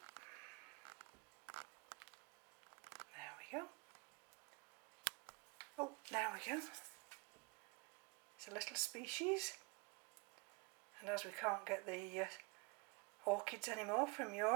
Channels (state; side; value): quieter; left; 29.9 dB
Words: There we go. Oh, there we go. It's a little species. And as we can't get the orchids anymore from